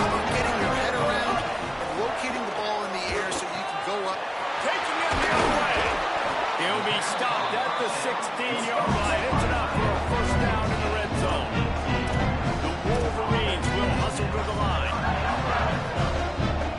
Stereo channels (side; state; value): both; identical; correlation 1.00